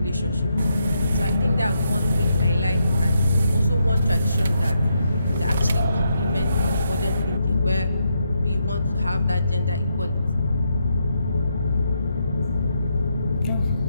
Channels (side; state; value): both; inverted; correlation -0.80